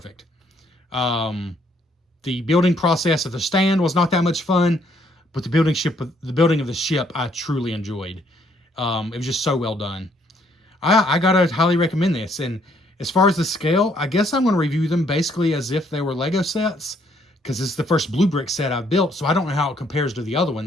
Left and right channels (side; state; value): both; normal; correlation 0.68